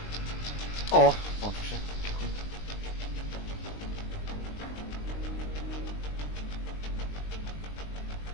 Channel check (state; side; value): late; right; 20 ms